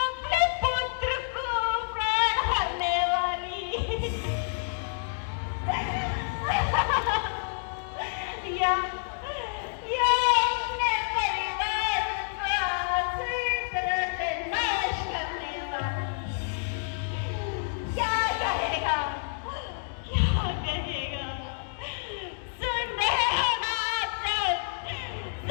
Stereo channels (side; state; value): right; silent; digital silence